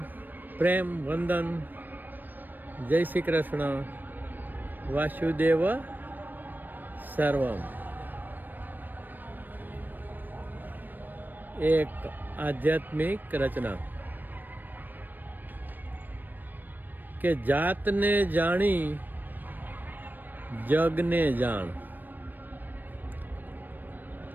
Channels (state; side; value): late; left; 0.090 ms